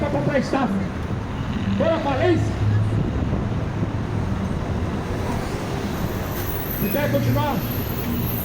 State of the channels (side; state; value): both; identical; correlation 1.00